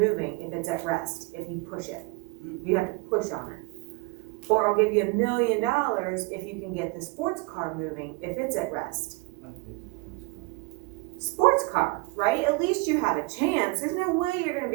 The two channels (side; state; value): left; quieter; 26.2 dB